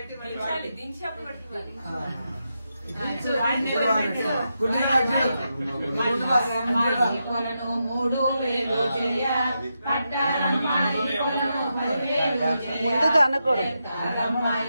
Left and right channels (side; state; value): both; inverted; correlation -0.86